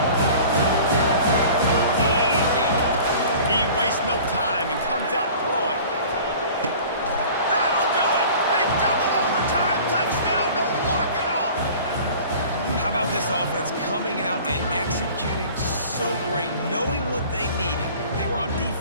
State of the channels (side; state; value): both; inverted; correlation -0.44